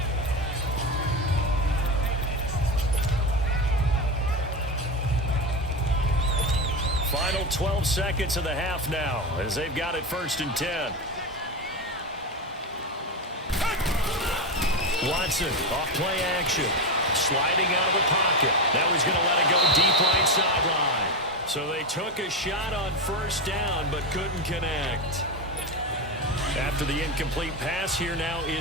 Final 12 seconds of the half now, as they've got it 1st and 10. Watson, off play action, sliding out of the pocket. Now he's going to let it go deep right sideline. So they took a shot on 1st down, but couldn't connect. After the incomplete pass, here now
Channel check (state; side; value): normal; both; correlation 0.17